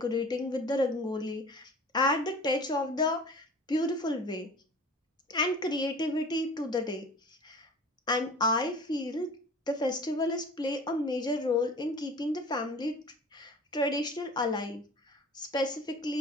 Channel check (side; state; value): both; normal; correlation 0.42